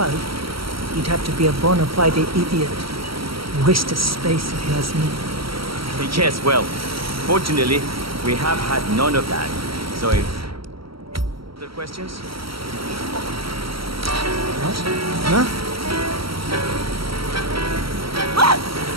You'd have to be a bona fide idiot. Waste of space if you ask me. Yes, well, fortunately, we have had none of that. So if... Other questions? What? Huh?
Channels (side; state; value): left; late; 0.75 ms